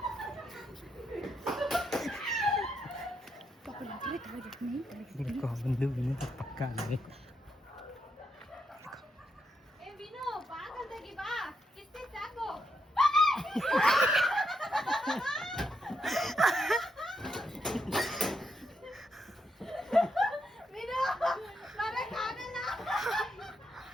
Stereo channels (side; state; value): both; normal; correlation 0.81